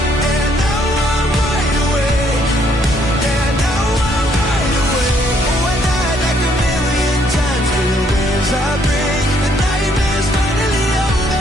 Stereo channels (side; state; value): both; normal; correlation 0.68